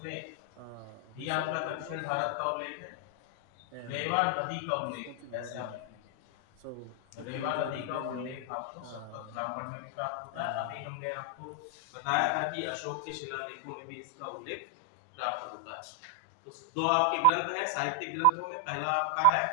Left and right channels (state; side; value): different; both; correlation 0.00